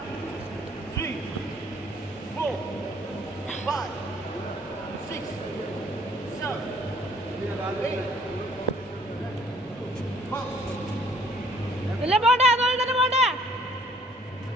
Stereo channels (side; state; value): both; normal; correlation 0.59